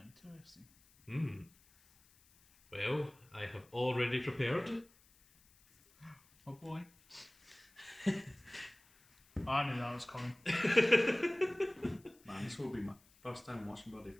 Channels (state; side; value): noise; left; hiss, 29 dB below the sound